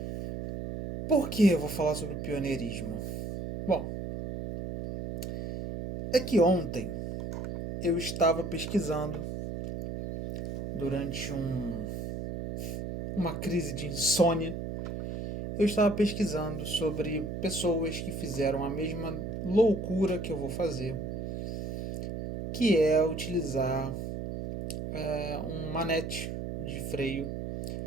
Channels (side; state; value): right; noise; hum, 5 dB below the sound